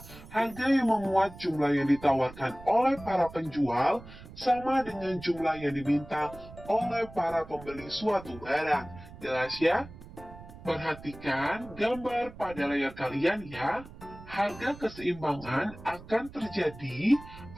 harga yang memuat jumlah yang ditawarkan oleh para penjual sama dengan jumlah yang diminta oleh para pembeli suatu barang. Jelas ya? Perhatikan gambar pada layar kalian ya. Harga keseimbangan akan terjadi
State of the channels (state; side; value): noise; right; rumble, 17 dB below the sound